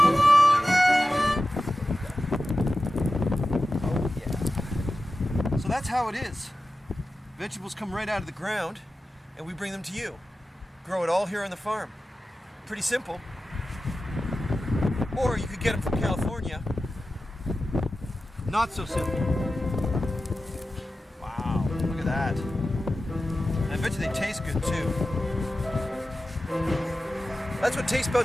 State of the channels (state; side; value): normal; both; correlation 0.93